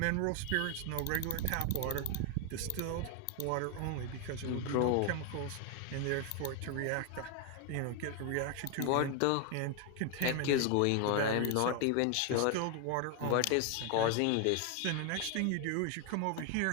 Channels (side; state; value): both; different; correlation 0.01